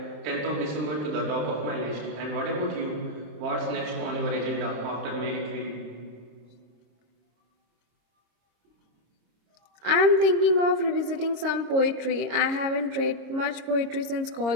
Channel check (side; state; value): left; late; 26 ms